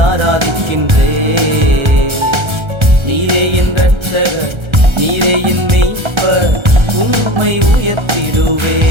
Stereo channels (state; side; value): late; left; 1.3 ms